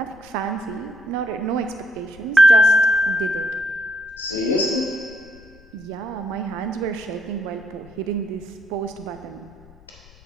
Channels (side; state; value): left; noise; rumble, 24 dB below the sound